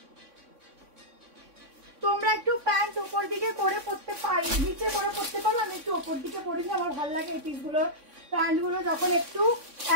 তোমরা একটু প্যান্ট উপর দিকে করে পরতে পারো, নিচে করে পরতে পারো, আমি একটু উপর দিকে পরে নিই, আমার ভালো লাগে এই পিসগুলো, প্যান্টগুলো যখন একটু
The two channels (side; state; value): left; late; 3.6 ms